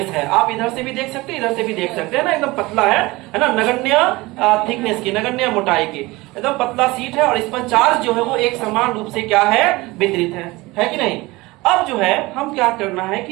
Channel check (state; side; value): quieter; left; 21.5 dB